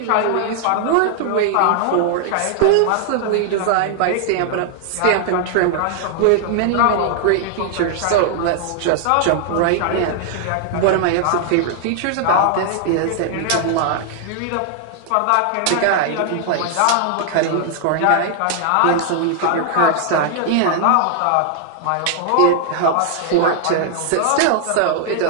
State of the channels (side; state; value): both; different; correlation 0.00